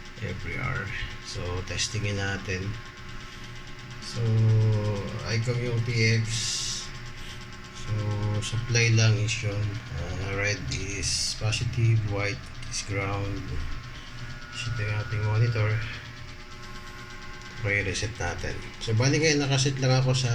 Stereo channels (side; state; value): both; identical; correlation 1.00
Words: every hour. So testingin natin. So icon yung PX. So supply lang is yun. Red is positive, white is ground. Ito yung ating monitor. Okay, reset natin. So bali ngayon nakaset lang ako sa